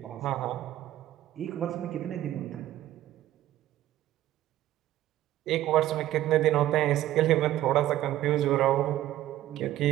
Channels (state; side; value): quieter; left; 13.8 dB